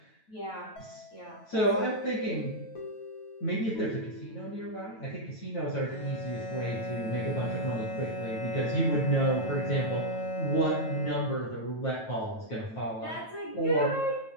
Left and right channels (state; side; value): late; right; 9.2 ms